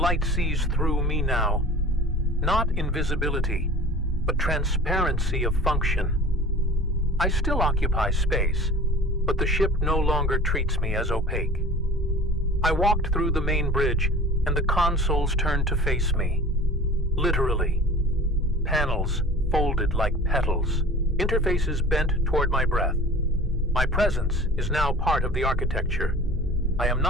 sees through me now. Not invisibility, but transparency of function. I still occupy space, but the ship no longer treats me as opaque. I walked through the main bridge, and the consoles turned to face me. Literally. Panels folded like petals, interfaces bent toward my breath. My presence is now part of the architecture. I am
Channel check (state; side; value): normal; both; correlation 0.41